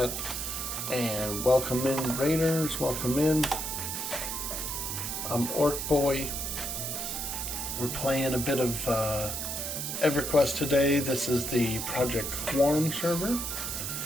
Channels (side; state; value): right; noise; hiss, 3 dB below the sound